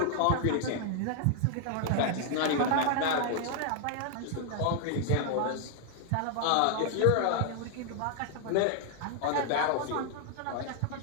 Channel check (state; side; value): different; both; correlation 0.00